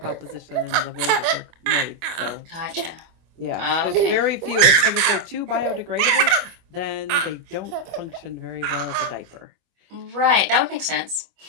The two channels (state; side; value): late; left; 25 ms